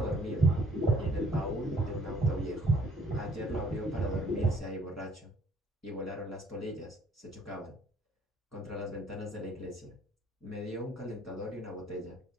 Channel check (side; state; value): both; normal; correlation 0.61